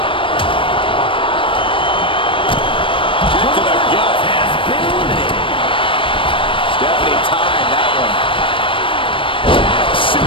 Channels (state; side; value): late; right; 0.25 ms